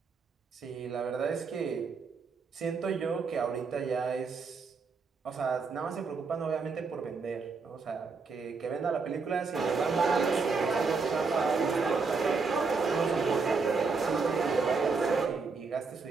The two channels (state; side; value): quieter; left; 4.7 dB